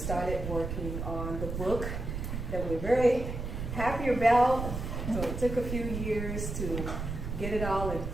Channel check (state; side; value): noise; right; rumble, 5 dB below the sound